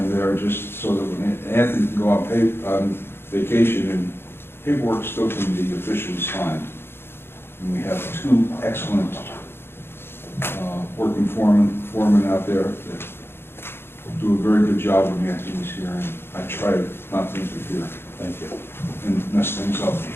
there just so that when Anthony can go on vacation and paperwork still can be officially signed. And we have 2 excellent working foremen out there that do a very good job when Anthony's here, and I try not to interfere. Thank you. And mess things up.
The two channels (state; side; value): late; right; 0.11 ms